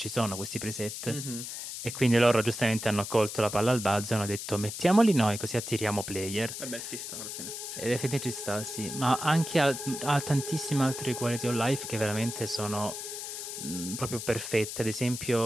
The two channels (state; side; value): noise; left; hiss, 7 dB below the sound